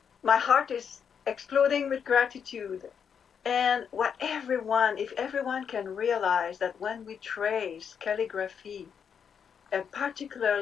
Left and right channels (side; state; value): right; quieter; 7.3 dB